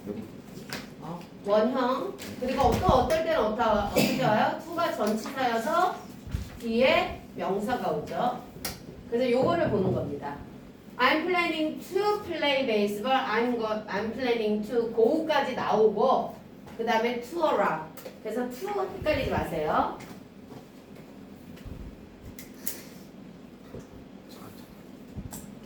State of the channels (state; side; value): identical; both; correlation 1.00